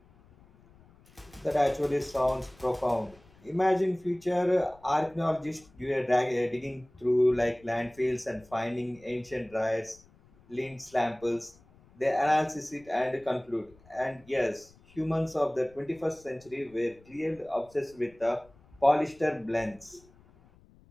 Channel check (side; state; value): left; noise; rumble, 27 dB below the sound